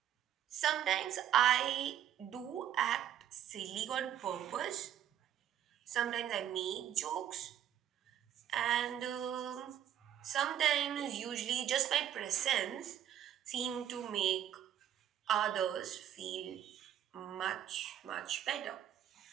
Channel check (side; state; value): left; quieter; 10.5 dB